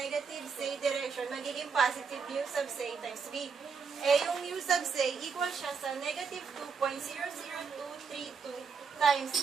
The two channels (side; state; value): left; quieter; 5.6 dB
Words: C direction, magiging positive U sub C times V. Yung U sub C equal siya sa negative 2.00232 times